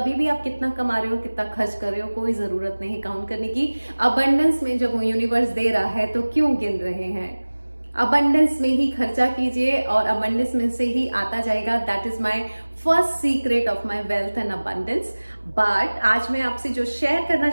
भी आप कितना कमा रहे हो, कितना खर्च कर रहे हो, कोई जरूरत नहीं काउंट करने की। अबंडेंस में जब यूनिवर्स दे रहा है तो क्यों गिन रहे हैं? अबंडेंस में ही खर्चा कीजिए और अबंडेंस में से ही आता जाएगा। That is my first secret of my wealth and abundance. But आज मैं आपसे जो शेयर करना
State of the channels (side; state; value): both; inverted; correlation -1.00